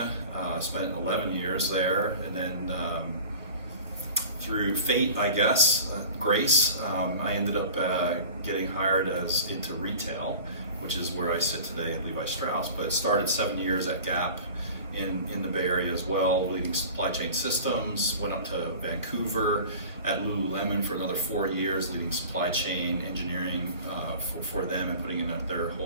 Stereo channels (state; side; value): inverted; both; correlation -0.40